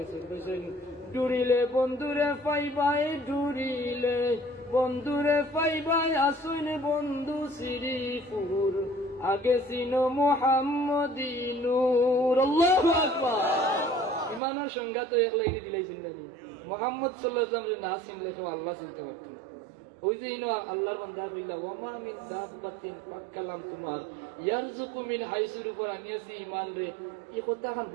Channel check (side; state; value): left; drops out; at 14.4 s